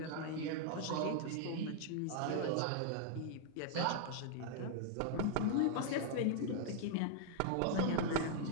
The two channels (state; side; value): different; both; correlation -0.01